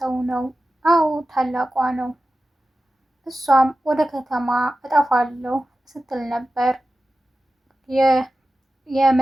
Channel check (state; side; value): normal; both; correlation 0.94